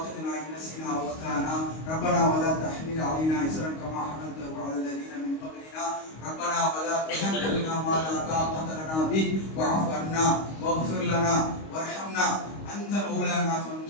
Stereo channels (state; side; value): late; right; 25 ms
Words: இன் நஸீனா வ அக்தானா ரப்பனா வ லா தஹ்மில் அலைனா இஸ்ரன் கமா ஹமல்தஹு அலல் லதீன மின் قبلنا ربنا ولا تحملنا ما لا طاقة لنا به واعف عنا واغفر لنا وارحمنا أنت مولانا